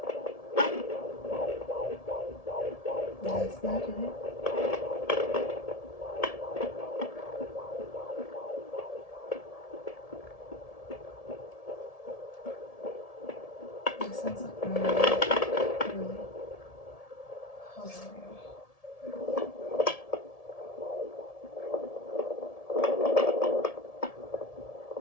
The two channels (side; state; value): right; late; 1.7 ms